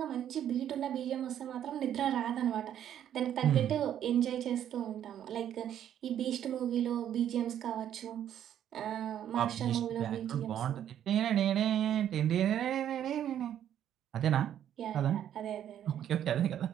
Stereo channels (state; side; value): quieter; left; 10.3 dB